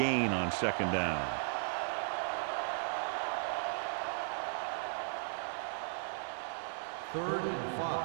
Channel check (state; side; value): silent; left; digital silence